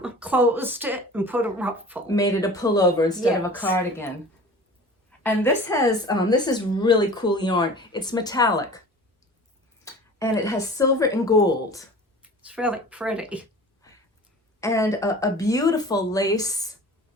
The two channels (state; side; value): normal; both; correlation 0.41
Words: closed it and put a ruffle. Made it a pullover instead of a Yes. cardigan. And this has, this is really cool yarn. It's metallic. And it has silver and gold. It's really pretty. And a beautiful lace